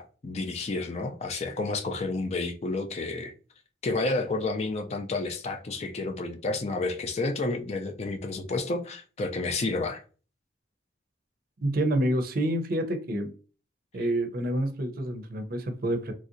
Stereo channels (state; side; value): normal; both; correlation 0.54